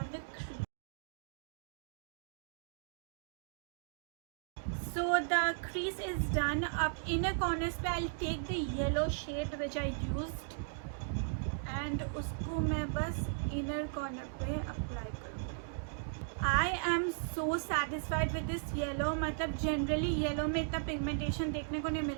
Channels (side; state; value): left; silent; digital silence